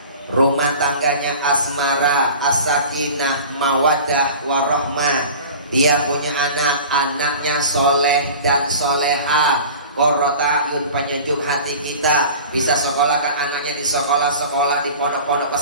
rumah tangganya asmara, as-sakinah, mawadah, warahmah. Dia punya anak, anaknya soleh dan soleha, qurrata ayun, penyejuk hati kita. Bisa sekolahkan anaknya di sekolah-sekolah, di pondok-pondok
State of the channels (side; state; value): both; inverted; correlation -0.39